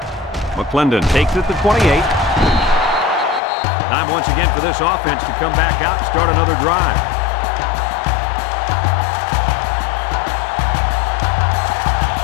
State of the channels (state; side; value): drops out; right; at 3.4 s